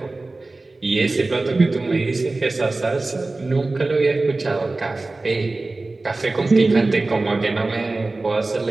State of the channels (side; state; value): left; quieter; 3.2 dB